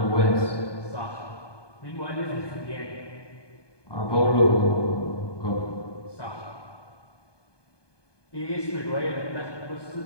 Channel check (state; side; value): late; right; 1.2 ms